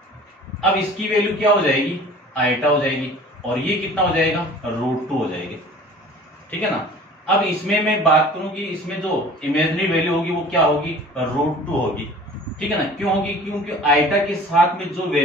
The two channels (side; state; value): both; normal; correlation 0.45